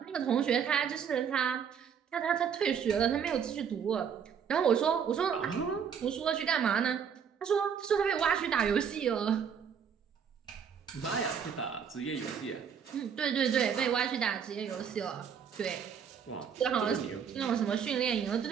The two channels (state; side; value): quieter; left; 7.4 dB